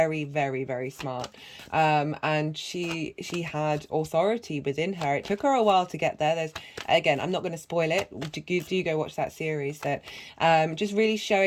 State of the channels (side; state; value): both; identical; correlation 1.00